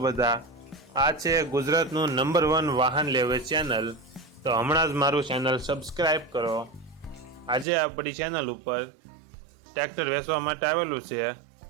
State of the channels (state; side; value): drops out; left; at 7.7 s